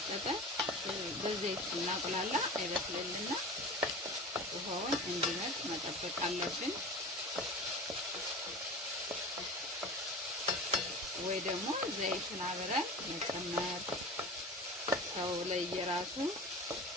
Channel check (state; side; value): normal; both; correlation 0.33